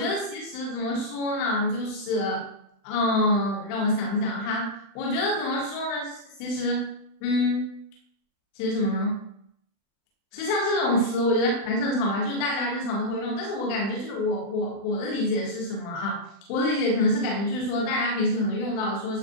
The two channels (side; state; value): right; late; 35 ms